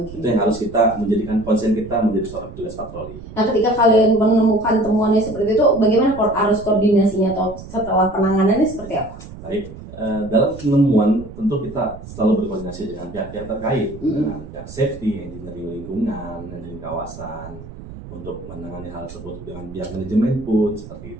Itu yang harus kita menjadikan konsen kita menjadi seorang petugas patroli. Nah, ketika kalian menemukan temuannya seperti itu, bagaimana arus koordinasinya atau setelah penanganannya seperti apa? Baik, dalam penemuan tentu kita selalu berkoordinasi dengan pihak-pihak terkait, dengan pihak safety, engineering lingkungan, engineering kawasan, untuk menangani hal tersebut dengan pihak manajemen pun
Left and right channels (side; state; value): right; noise; rumble, 14 dB below the sound